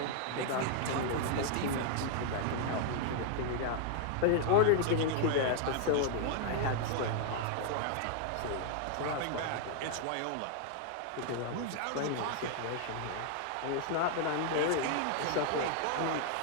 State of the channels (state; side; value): different; both; correlation 0.00